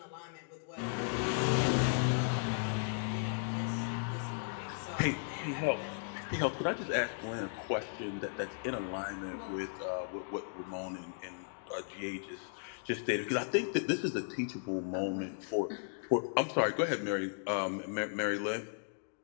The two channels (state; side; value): silent; right; digital silence